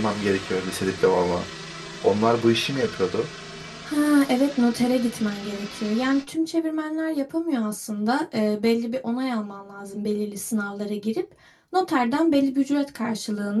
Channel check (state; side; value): identical; both; correlation 1.00